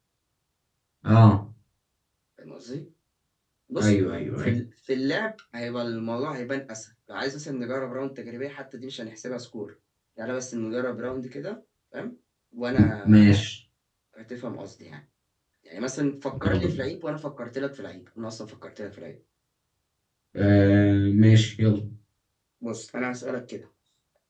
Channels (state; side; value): identical; both; correlation 1.00